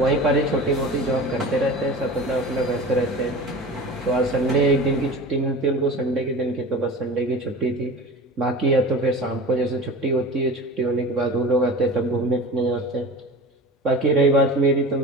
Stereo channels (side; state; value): both; normal; correlation 0.34